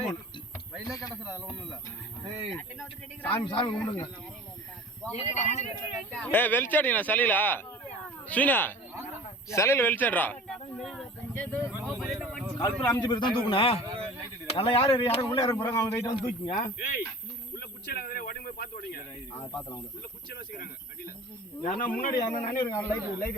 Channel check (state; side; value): normal; both; correlation 0.41